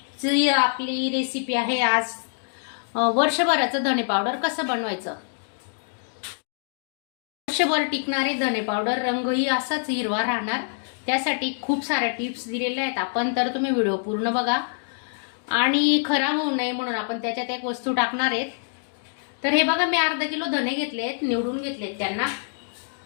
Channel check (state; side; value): silent; right; digital silence